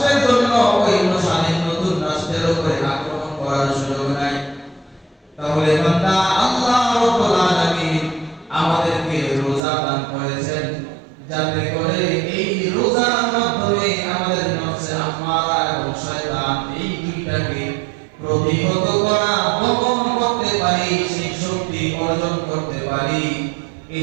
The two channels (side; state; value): left; drops out; at 9.6 s